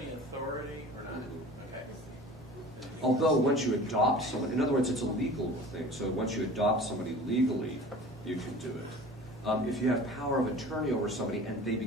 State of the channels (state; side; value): normal; both; correlation 0.41